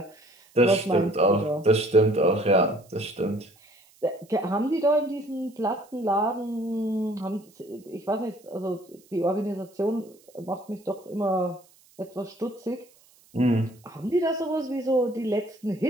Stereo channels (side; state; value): right; noise; hiss, 29 dB below the sound